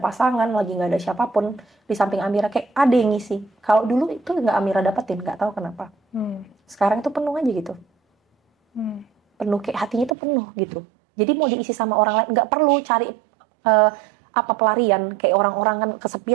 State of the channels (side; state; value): left; drops out; at 10.2 s